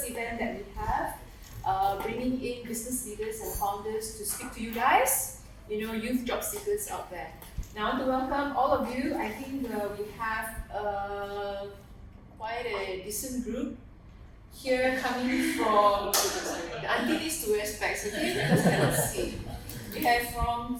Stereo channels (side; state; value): both; identical; correlation 1.00